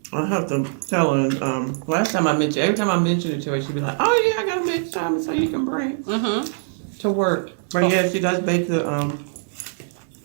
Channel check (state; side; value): silent; left; 64 dB below the other